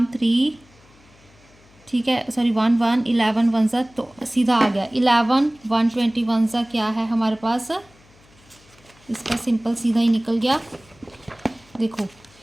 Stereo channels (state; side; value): noise; left; hum, 28 dB below the sound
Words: 3। ठीक है, सॉरी 1 1, 11 1 ज़ा तो सीधा आ गया 11 1 21 ज़ा क्या है हमारे पास? इसका सिंपल सीधा ही निकल गया। देखो